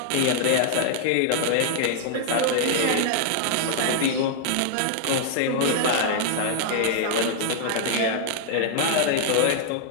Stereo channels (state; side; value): different; both; correlation 0.00